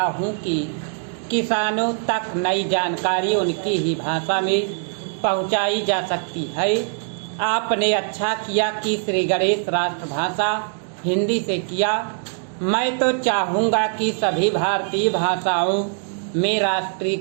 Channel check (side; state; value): left; silent; digital silence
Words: हूँ कि किसानों तक नई जानकारी उनकी ही भाषा में पहुँचाई जा सकती है। आपने अच्छा किया कि श्री गणेश राष्ट्रभाषा हिंदी से किया। मैं तो चाहूँगा कि सभी भारतीय भाषाओं में राष्ट्रीय